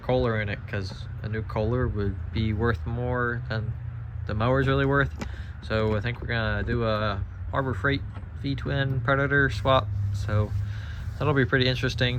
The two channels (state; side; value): identical; both; correlation 1.00